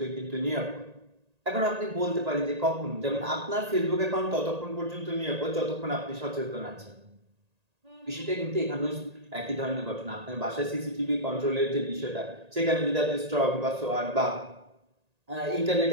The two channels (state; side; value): late; left; 1.8 ms